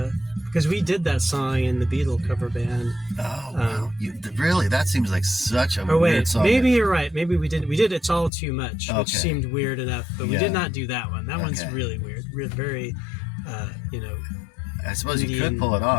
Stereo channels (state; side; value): drops out; right; at 8.3 s